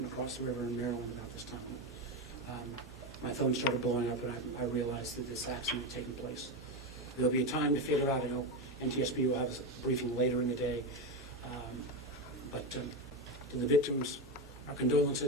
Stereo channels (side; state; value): both; normal; correlation 0.14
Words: across the river in Maryland about this time. My phone started blowing up and I realized that this accident had taken place. There'll be a time to figure out. I know NTSB will have a briefing later in the day. But to the victims, our